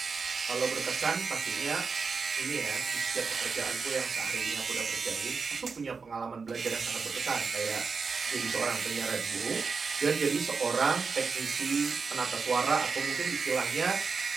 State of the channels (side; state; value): left; quieter; 5.0 dB